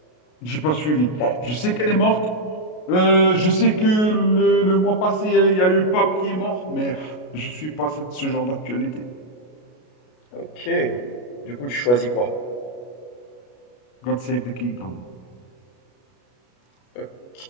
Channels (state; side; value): late; right; 33 ms